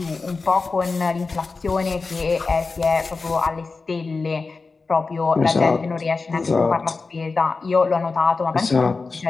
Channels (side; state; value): right; quieter; 4.1 dB